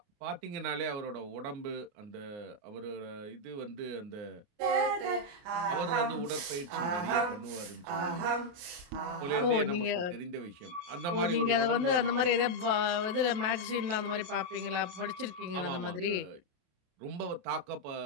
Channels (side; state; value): left; late; 28 ms